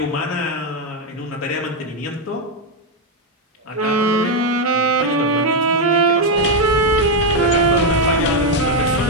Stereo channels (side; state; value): both; normal; correlation 0.03